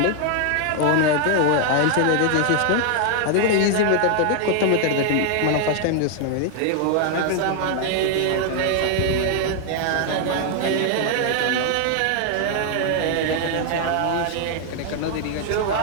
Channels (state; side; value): different; both; correlation 0.00